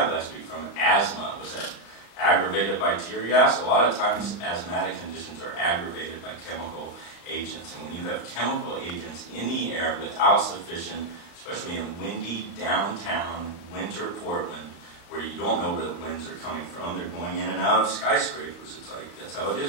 last week from asthma. Was that aggravated by tear gas? A lot of times asthmatic conditions are aggravated by chemical agents. And when you have chemical agents in the air without sufficient, especially in windy downtown winter Portland, where you don't know where the winds are coming from, they're going in and out of skyscrapers. It's like, that's how it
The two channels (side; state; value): right; late; 35 ms